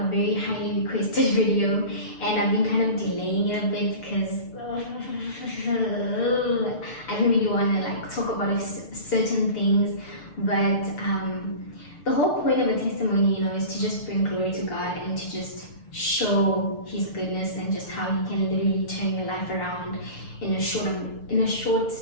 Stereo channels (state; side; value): late; right; 6.8 ms